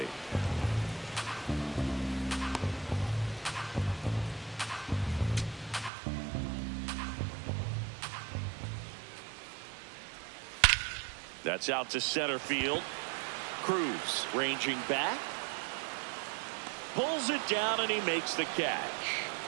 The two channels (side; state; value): left; drops out; at 5.9 s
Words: That's out to center field. Cruz ranging back. Pulls it down and he makes the catch.